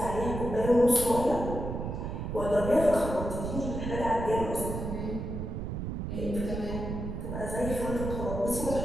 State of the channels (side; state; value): right; noise; rumble, 5 dB below the sound